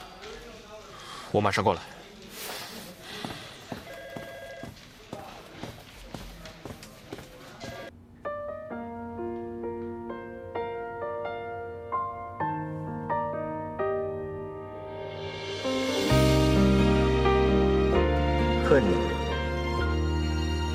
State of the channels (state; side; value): identical; both; correlation 1.00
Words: 我马上过来。恨你，